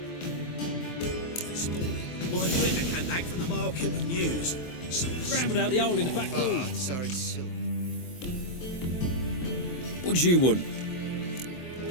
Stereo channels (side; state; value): right; late; 23 ms